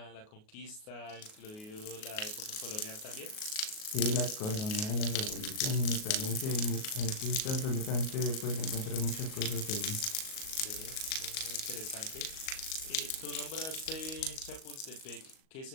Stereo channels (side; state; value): right; late; 38 ms